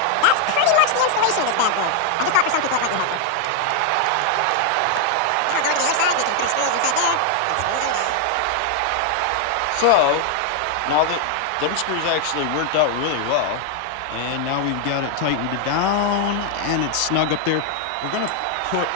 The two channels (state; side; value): different; both; correlation 0.00